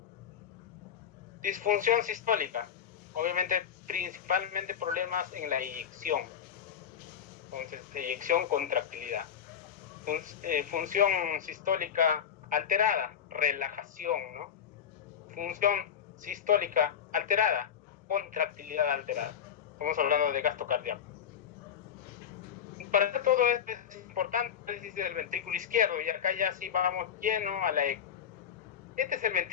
Disfunción sistólica, obviamente principalmente problemas en la eyección. Entonces, eyección, contractilidad. Función sistólica alterada, relajación, ¿no? Función sistólica alterada, contractilidad alterada. Estamos hablando de gasto cardíaco. Para todo esto es importante el análisis del ventrículo izquierdo, y acá ya sí vamos lleno a la eco. Este es el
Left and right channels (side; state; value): right; quieter; 8.4 dB